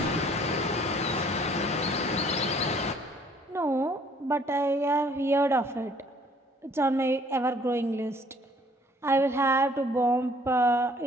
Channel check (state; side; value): normal; both; correlation 0.59